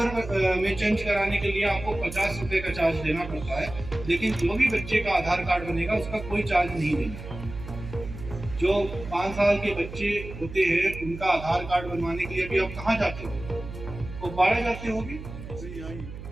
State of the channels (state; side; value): noise; right; hum, 12 dB below the sound